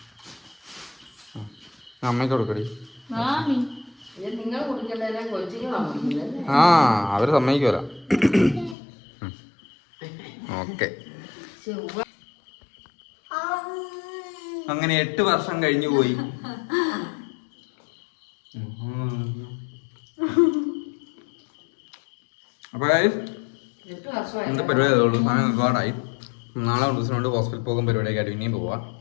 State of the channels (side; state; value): right; drops out; at 8.8 s